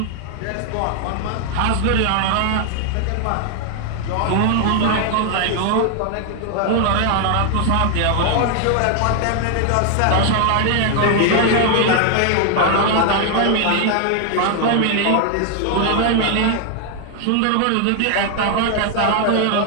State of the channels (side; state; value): both; different; correlation 0.00